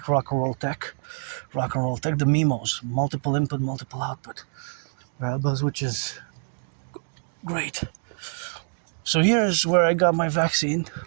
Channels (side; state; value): left; silent; 61 dB below the other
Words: rock and roll tech, the MIMOs, multiple input, multiple output variables, which is great. So here's where I got my vaccine,